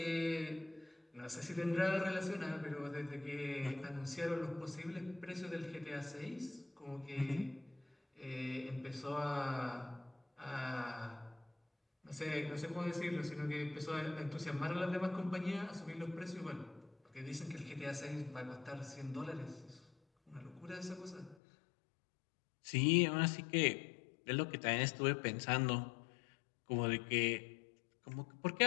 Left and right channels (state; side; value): drops out; right; at 21.4 s